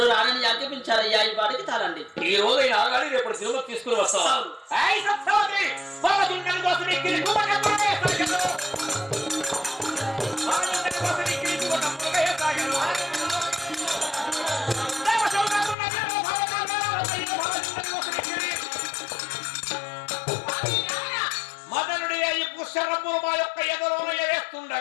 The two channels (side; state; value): right; drops out; at 15.8 s